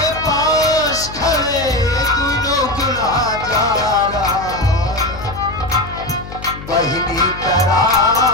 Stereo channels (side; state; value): left; noise; hum, 13 dB below the sound